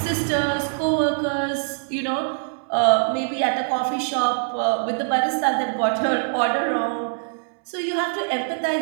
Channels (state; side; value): silent; left; 63 dB below the other